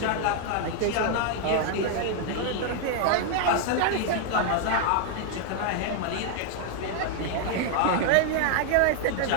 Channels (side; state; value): both; different; correlation 0.00